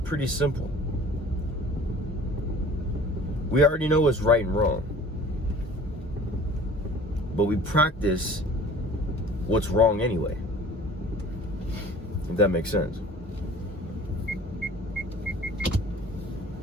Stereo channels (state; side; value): normal; both; correlation 0.47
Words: pretty simple. We already know what's right and wrong, but we practice what's wrong anyway, if that makes sense.